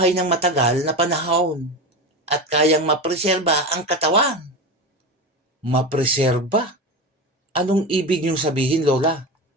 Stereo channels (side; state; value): both; normal; correlation 0.23